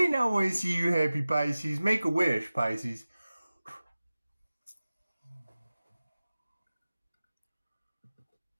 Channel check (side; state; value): both; inverted; correlation -0.97